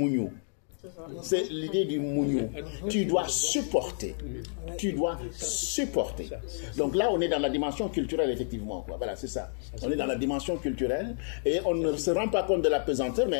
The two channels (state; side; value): silent; right; 58 dB below the other